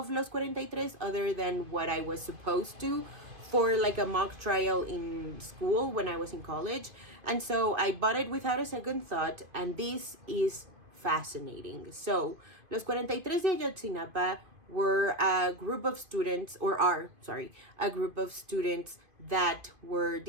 Los 43 other than what I was supposed to for a mock trial in school when I was in college. And so I bought it without a second thought, and this is fascinating. So, Los 43 de Ayotzinapa were a group of students, a group of students that were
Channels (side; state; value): left; late; 2.5 ms